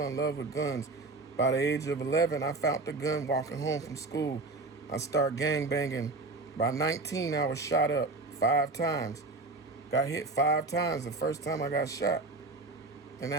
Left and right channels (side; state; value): left; quieter; 3.5 dB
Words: in love with guns. By the age of 11, I found the gun walking home from school. I started gangbanging. By 19, I was shot up 5 times. Got hit 5 times the first time I got shot. And